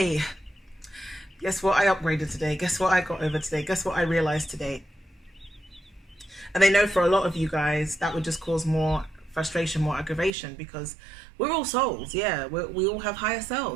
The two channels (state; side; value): drops out; left; at 10.3 s